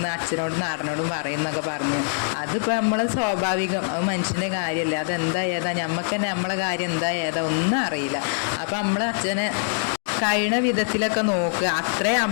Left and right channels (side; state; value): right; silent; digital silence